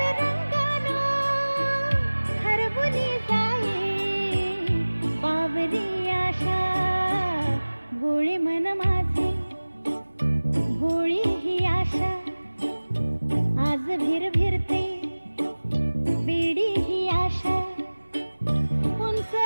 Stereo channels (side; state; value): both; inverted; correlation -1.00